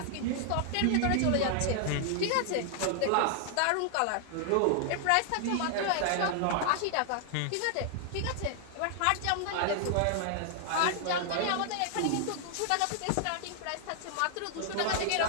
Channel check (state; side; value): different; both; correlation 0.00